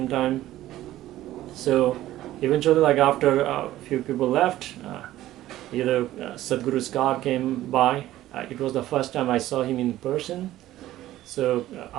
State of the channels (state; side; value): quieter; left; 14.5 dB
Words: time. So eventually, after a few people left, either Sadhguru's car came by. It was the first time I saw him in person. So